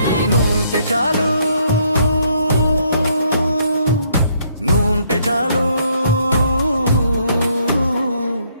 నువ్వుంటే చాలు, నువ్వుంటే చాలు,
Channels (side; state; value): both; inverted; correlation -0.69